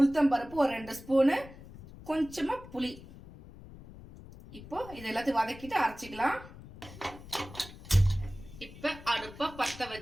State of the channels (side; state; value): left; noise; rumble, 17 dB below the sound